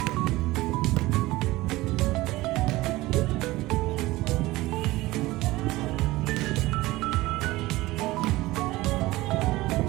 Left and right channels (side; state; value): left; quieter; 19.0 dB